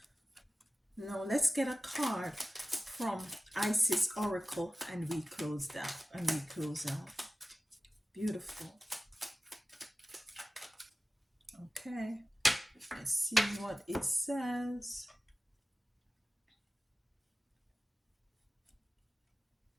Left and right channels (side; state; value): both; normal; correlation 0.95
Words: Now let's get a card from Isis Oracle and we close out. Beautiful. Okay. Let's see what it says.